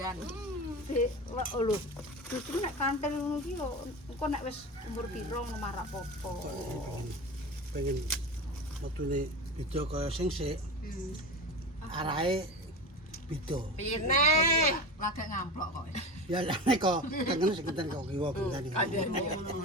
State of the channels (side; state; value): both; normal; correlation 0.28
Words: Lho. Justru nek kantel ngono ki lho engko nek wis umur pira ngono marak popo. Pengen metune beda kaya sing sik. Arahe beda. Pine. Lagek ngamplok kok. Ya lah nek kok tengen sing kenten kok kiwa bentane.